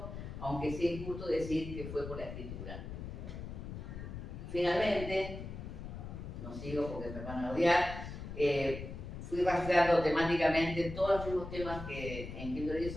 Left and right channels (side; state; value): left; noise; rumble, 8 dB below the sound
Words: aunque sea injusto decir que fue por la escritura. Finalmente, no sigo porque me van a odiar, fui rastreando temáticamente todos los mismos temas que en Quinto